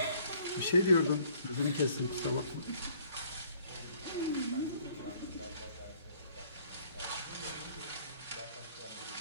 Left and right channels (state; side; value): inverted; both; correlation -0.59